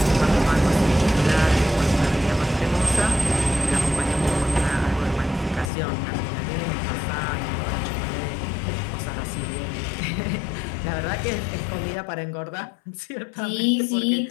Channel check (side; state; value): right; drops out; at 5.7 s